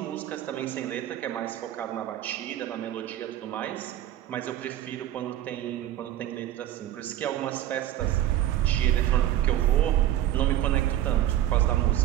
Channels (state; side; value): quieter; left; 12.6 dB